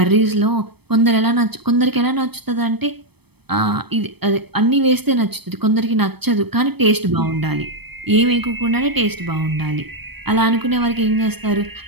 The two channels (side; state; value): left; late; 0.97 ms